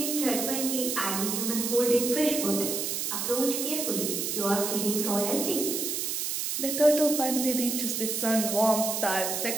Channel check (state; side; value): noise; right; hiss, 1 dB below the sound